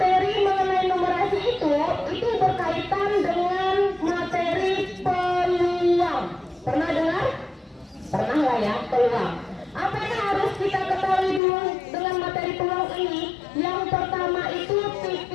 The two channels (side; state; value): right; drops out; at 11.4 s